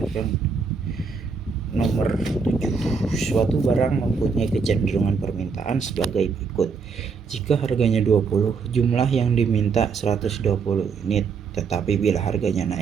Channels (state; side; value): quieter; left; 5.3 dB